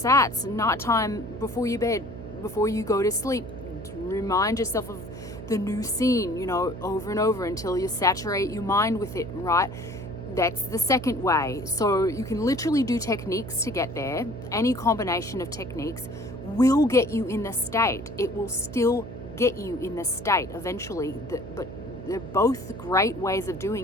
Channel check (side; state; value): right; noise; hum, 12 dB below the sound